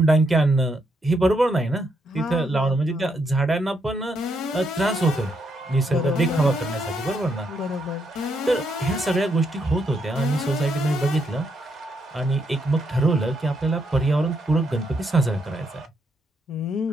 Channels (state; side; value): normal; both; correlation 0.77